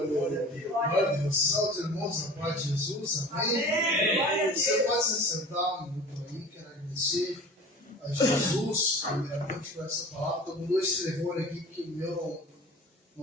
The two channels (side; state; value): both; normal; correlation 0.40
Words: Glória a Deus. Salve, irmãos, a paz de Jesus. Amém? Amém. Você pode se sentar um minuto aí. Quero agradecer a Jesus, primeiramente, por essa palavra. Estou com 2 telefones aqui, porque o meu